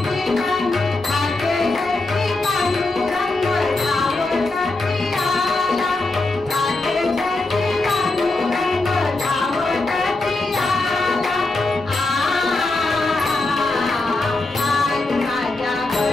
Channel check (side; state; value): right; quieter; 3.1 dB